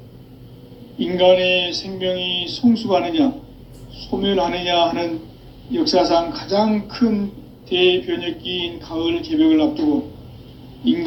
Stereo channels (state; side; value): identical; both; correlation 1.00